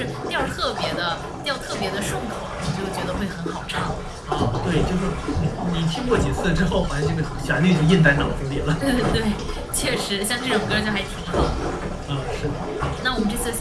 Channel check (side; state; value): both; identical; correlation 1.00